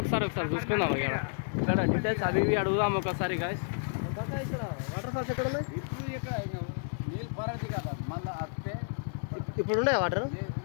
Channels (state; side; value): silent; right; 56 dB below the other